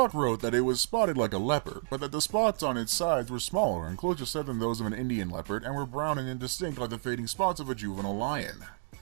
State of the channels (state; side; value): silent; left; digital silence